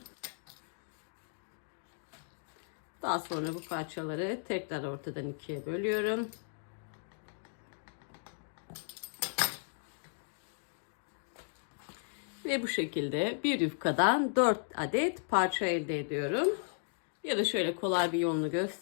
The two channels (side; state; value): right; silent; digital silence